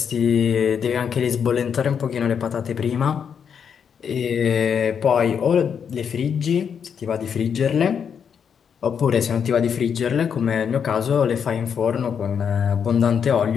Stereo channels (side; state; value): right; quieter; 7.3 dB